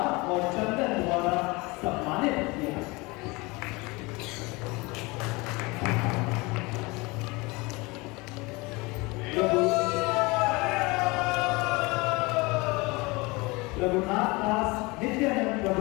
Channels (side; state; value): right; quieter; 24.8 dB